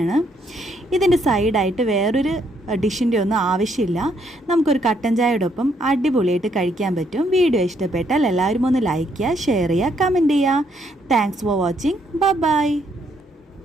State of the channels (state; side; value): normal; both; correlation 0.72